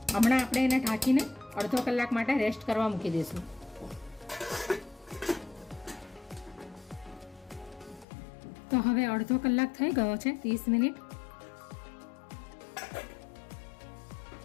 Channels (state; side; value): drops out; right; at 8.1 s